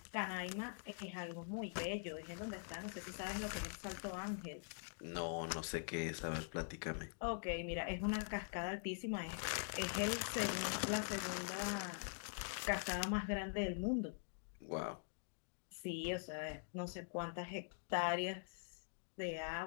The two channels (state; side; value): silent; right; digital silence